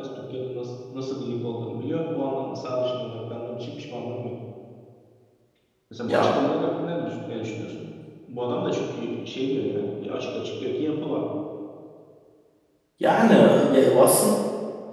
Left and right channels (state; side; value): identical; both; correlation 1.00